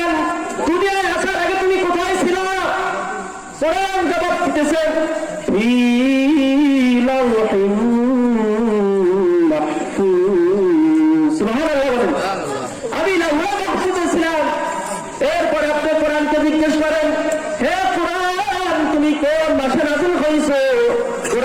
দুনিয়ায় আসার আগে তুমি কোথায় ছিল? কোরআন জবাব দিতেছে, ফি লাওহিন মাহফুজ। সুবহানাল্লাহ। আমি লাওহে মাহফুজে ছিলাম। এরপরে আপনি কোরআনকে জিজ্ঞেস করেন, হে কোরআন তুমি কোন মাসে নাযিল হইছো?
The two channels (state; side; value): identical; both; correlation 1.00